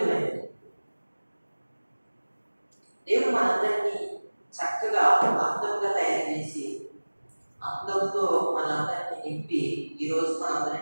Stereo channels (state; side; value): inverted; both; correlation -1.00